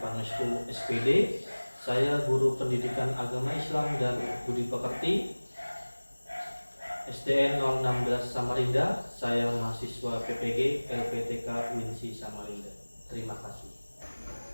Pangestu SPD. Saya guru pendidikan agama Islam dan budi pekerti SDN 016 Samarinda. Saya mahasiswa PPG LPTK Winsi Samarinda. Terima kasih.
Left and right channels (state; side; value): inverted; both; correlation -1.00